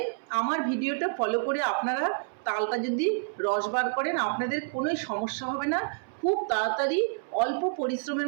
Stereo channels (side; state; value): left; silent; 59 dB below the other